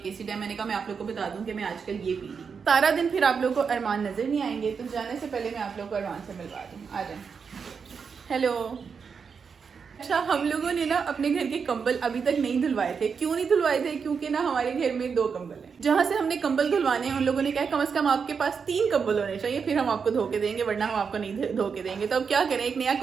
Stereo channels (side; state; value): left; quieter; 5.9 dB